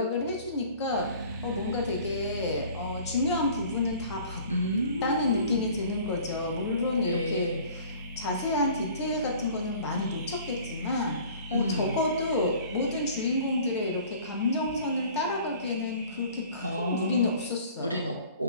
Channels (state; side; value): inverted; both; correlation -0.49